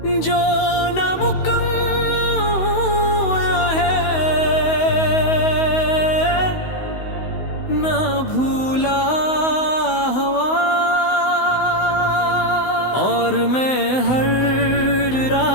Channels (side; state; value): right; late; 16 ms